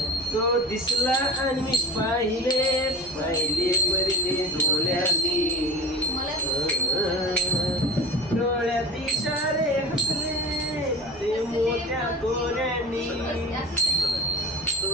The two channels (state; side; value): normal; both; correlation 0.33